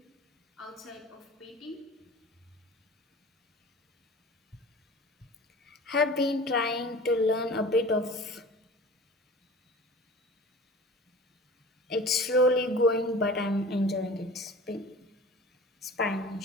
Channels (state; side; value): normal; both; correlation 0.40